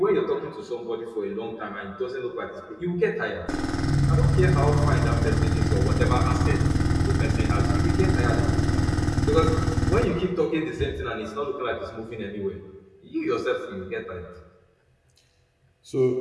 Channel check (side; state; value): both; identical; correlation 1.00